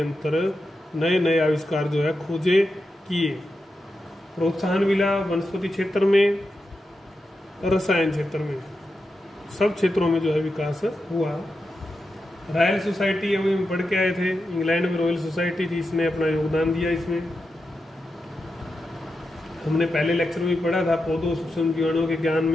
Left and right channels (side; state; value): both; normal; correlation 0.89